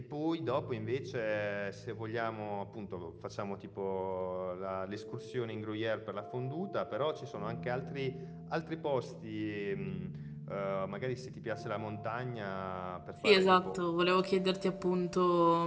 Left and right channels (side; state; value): both; identical; correlation 1.00